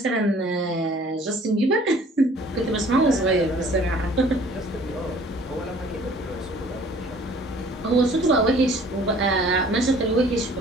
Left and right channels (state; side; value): normal; both; correlation 0.53